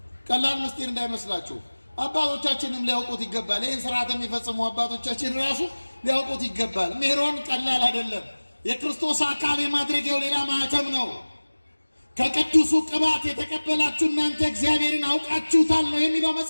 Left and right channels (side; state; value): both; inverted; correlation -1.00